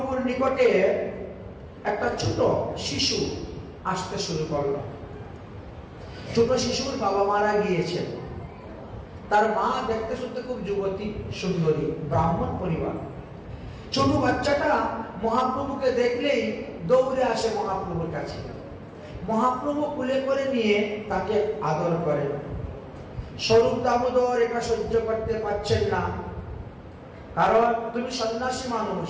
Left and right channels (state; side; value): identical; both; correlation 1.00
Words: নিকটে একটা ছোট শিশু আসতে শুরু করলো। ছোট শিশুর বাবা মারা গিয়েছেন। তার মা দেখতে শুনতে খুব যুবতী, সুন্দরী, ব্রাহ্মণ পরিবার। ছোট বাচ্চাটা মহাপ্রভুকে দেখলেই দৌড়ে আসে মহাপ্রভুর কাছে। মহাপ্রভু কুলে করে নিয়ে তাকে আদর করেন। স্বরূপ দামোদর এটা সহ্য করতে পারছেন না, কারণ তুমি সন্ন্যাসী মানুষ,